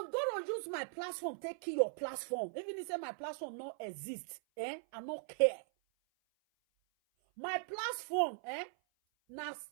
going to use my platform to kill your platform. Even if say my platform not exist, I don't care. My platform, na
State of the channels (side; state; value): left; silent; 51 dB below the other